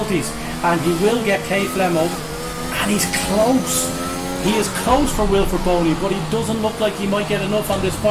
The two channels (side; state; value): both; identical; correlation 1.00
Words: and he will get K Flemo, and he's close. He is close for Wilfred Boney, but he doesn't look like he might get enough on this